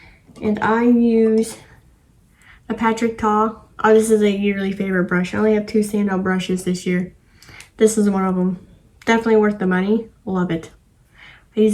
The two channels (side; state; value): both; identical; correlation 1.00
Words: And I use a Patrick Ta. Oh, this is a yearly favorite brush. I only have 2 standout brushes this year. This is one of them. Definitely worth the money. Love it. I